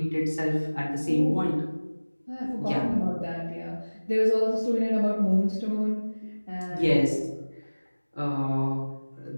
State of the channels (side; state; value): both; inverted; correlation -1.00